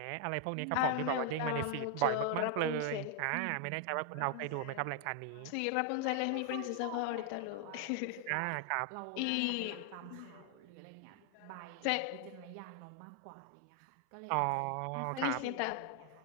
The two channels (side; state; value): both; different; correlation 0.00